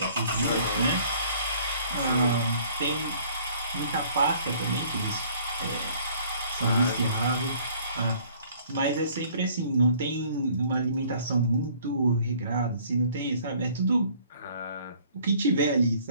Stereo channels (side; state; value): both; inverted; correlation -0.57